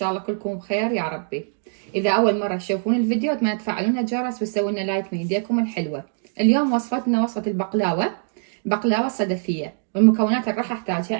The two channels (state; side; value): silent; left; 63 dB below the other